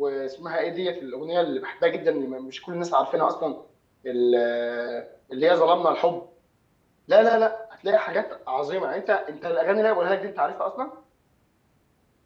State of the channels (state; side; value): identical; both; correlation 1.00